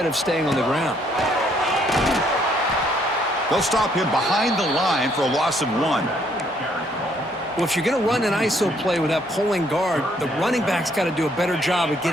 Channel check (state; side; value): normal; both; correlation 0.68